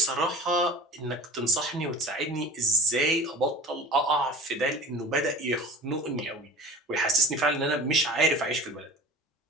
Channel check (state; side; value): normal; both; correlation 0.39